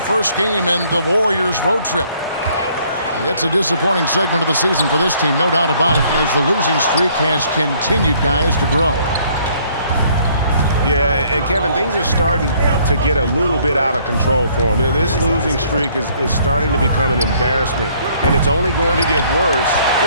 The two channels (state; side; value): inverted; both; correlation -0.62